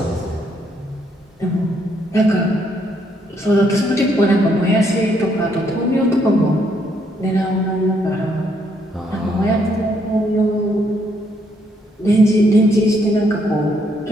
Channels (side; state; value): both; normal; correlation 0.72